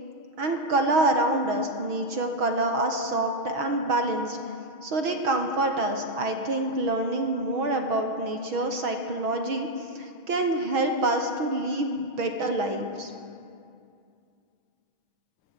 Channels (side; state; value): left; late; 6.3 ms